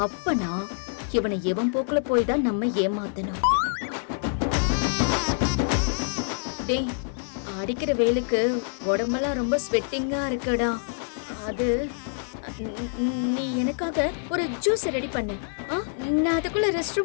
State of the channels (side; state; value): right; silent; 61 dB below the other